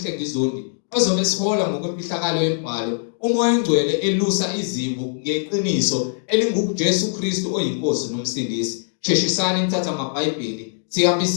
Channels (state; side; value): silent; right; digital silence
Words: ozobe sihola ngokwemfihlakalo yembhalo umoya engcwele elusa izimvu ngeqiniso elinguJesu Kristu oyinkosi nomsindisi. Sheshisani nithatha amabhayibheli